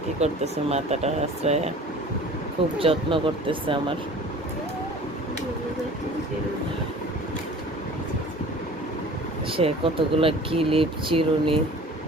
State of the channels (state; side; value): normal; both; correlation 0.44